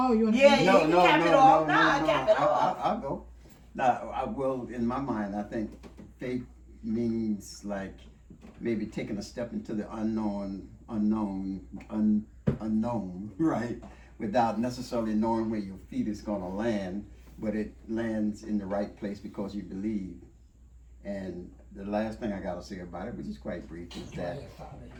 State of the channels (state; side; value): identical; both; correlation 1.00